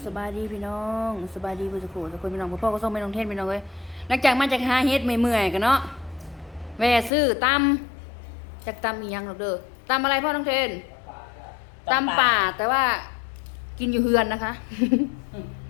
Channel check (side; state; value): right; drops out; at 7.1 s